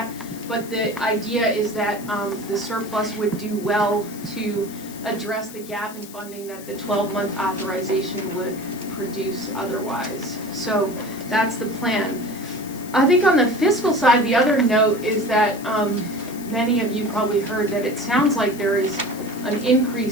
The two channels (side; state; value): left; noise; hiss, 17 dB below the sound